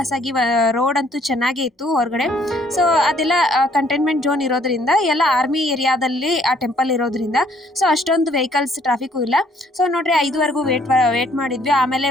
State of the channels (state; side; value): normal; both; correlation 0.63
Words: ಆಗಿ, ರೋಡ್ ಅಂತೂ ಚೆನ್ನಾಗೇ ಇತ್ತು ಹೊರಗಡೆ. ಸೊ ಅದೆಲ್ಲ ಕಂಟೈನ್ಮೆಂಟ್ ಝೋನ್ ಇರೋದ್ರಿಂದ, ಎಲ್ಲ ಆರ್ಮಿ ಏರಿಯಾದಲ್ಲಿ ಆ ಟೆಂಪಲ್ ಇರೋದ್ರಿಂದ ಸೊ ಅಷ್ಟೊಂದು ವೆಹಿಕಲ್ಸ್ ಟ್ರಾಫಿಕ್ಕು ಇಲ್ಲ. ಸೊ ನೋಡ್ರಿ, 5ವರೆಗೂ ವೇಟ್ ಮಾಡಿದ್ವಿ. ಆಮೇಲೆ